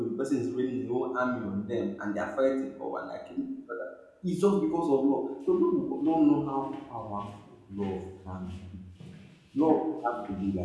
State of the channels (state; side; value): identical; both; correlation 1.00